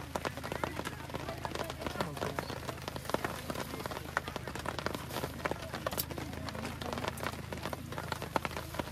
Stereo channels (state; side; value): identical; both; correlation 1.00